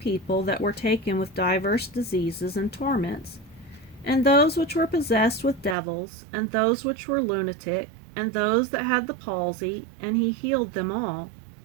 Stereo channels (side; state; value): left; drops out; at 5.8 s